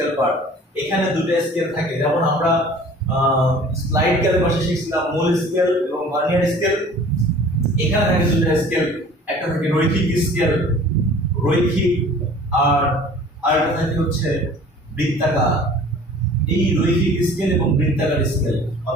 পার্ট। এখানে দুটো স্কেল থাকে, যেমন আমরা স্লাইড ক্যালিপারে শিখছিলাম মূল স্কেল এবং ভার্নিয়ার স্কেল। এখানে থাকে দুটো স্কেল, একটা থাকে রৈখিক স্কেল, রৈখিক, আর আরেকটা থাকে হচ্ছে বৃত্তাকার। এই রৈখিক স্কেল এবং বৃত্তাকার স্কেল,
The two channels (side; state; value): both; normal; correlation 0.47